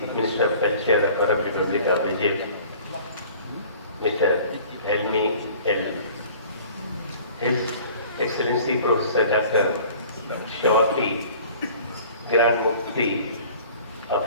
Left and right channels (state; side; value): inverted; both; correlation -0.48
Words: Minister of Culture of Arab Republic of Egypt, Mr. Helmi El, His Excellency Professor Dr. Shawaki, Grand Mufti